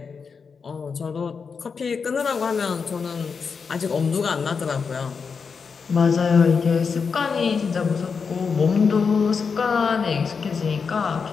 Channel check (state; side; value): quieter; right; 5.6 dB